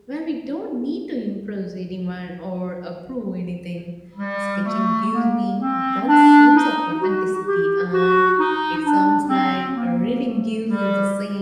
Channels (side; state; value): both; identical; correlation 1.00